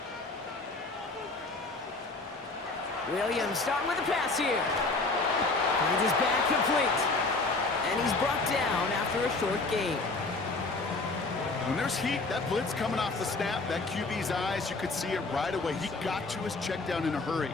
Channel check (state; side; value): quieter; right; 3.5 dB